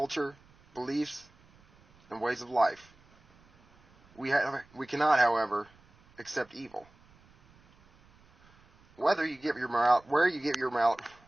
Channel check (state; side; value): noise; right; rumble, 29 dB below the sound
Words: beliefs, and ways of life. We cannot, however, accept evil. Where you get your